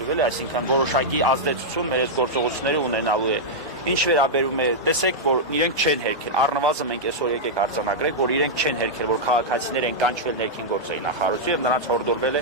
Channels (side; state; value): both; normal; correlation -0.06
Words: էլի, այսինքն որոշակի ազդեցություն մեր այս գործողությունները ունենալու է։ Ինչ վերաբերում է, տեսեք, որ իրենք չեն հերքել, առնվազն մենք այսօր եկեք արձանագրենք, որ իրենք չեն հերքել, որ քաղաքացիներ են կանչվել ներքին գործերի նախարարություն եւ նրանց հորդորվել